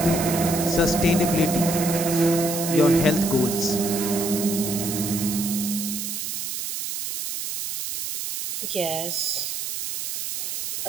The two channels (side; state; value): right; noise; hiss, 4 dB below the sound